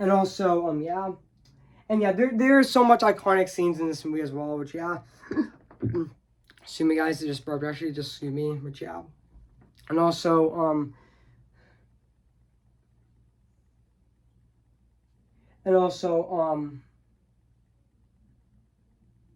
and there's so much iconic scenes in this movie as well, which excuse me guys, just burped, actually, just excuse me, which and also and also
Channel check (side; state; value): both; identical; correlation 1.00